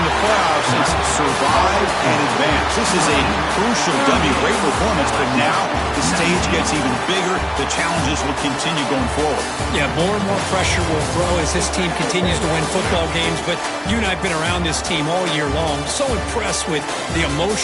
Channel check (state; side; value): identical; both; correlation 1.00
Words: the playoffs, it's survive and advance. This is a crucial W. Great performance, but now the stage gets even bigger. The challenges will continue going forward. Yeah, more and more pressure will grow as this team continues to win football games. But you and I have been around this team all year long. So impressed with the